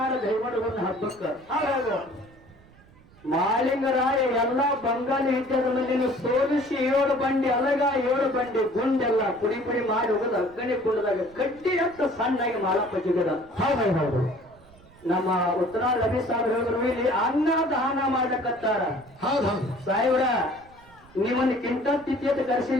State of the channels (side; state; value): right; noise; rumble, 26 dB below the sound